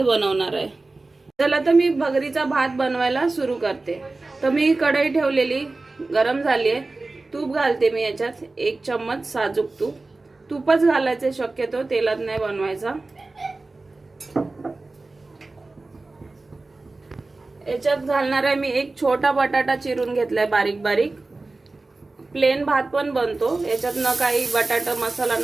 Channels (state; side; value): quieter; left; 3.3 dB